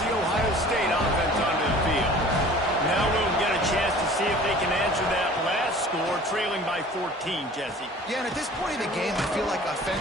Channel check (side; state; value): both; normal; correlation 0.46